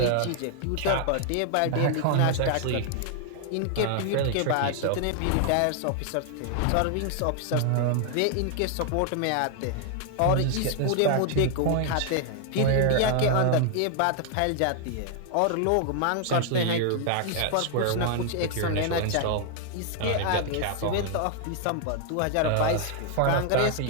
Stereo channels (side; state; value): both; different; correlation 0.00